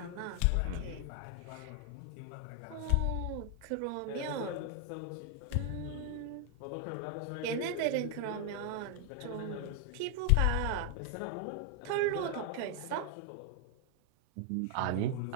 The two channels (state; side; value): different; both; correlation 0.00